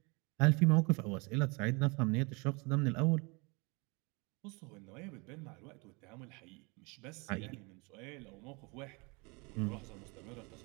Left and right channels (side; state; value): left; quieter; 29.5 dB